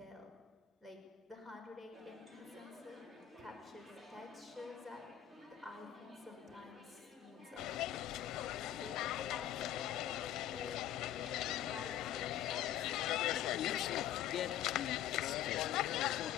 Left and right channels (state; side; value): quieter; right; 11.5 dB